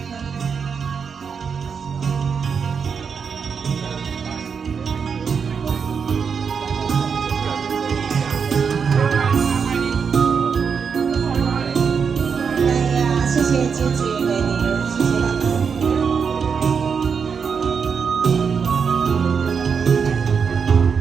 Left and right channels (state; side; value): quieter; left; 6.2 dB